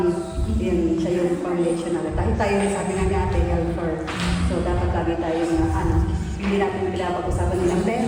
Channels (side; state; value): both; identical; correlation 1.00